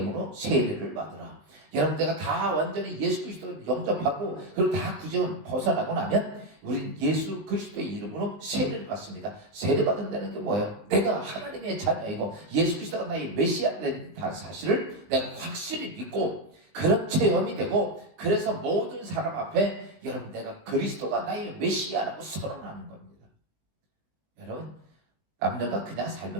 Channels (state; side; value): late; left; 19 ms